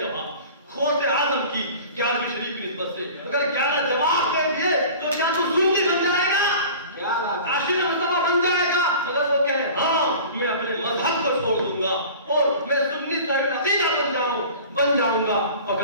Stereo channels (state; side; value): inverted; both; correlation -0.41